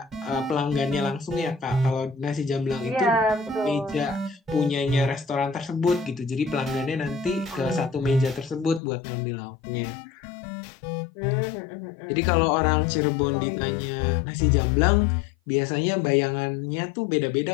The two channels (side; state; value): right; drops out; at 8.8 s